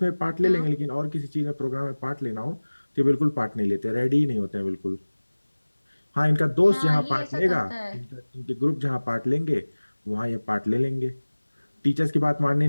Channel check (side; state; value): both; inverted; correlation -1.00